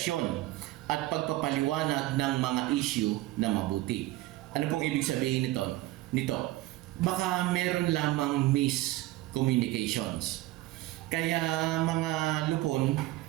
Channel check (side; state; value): left; quieter; 17.2 dB